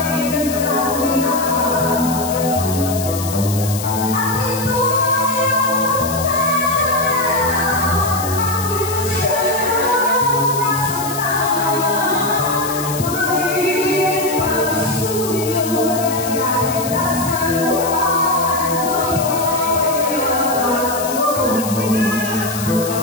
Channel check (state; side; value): noise; left; hiss, 9 dB below the sound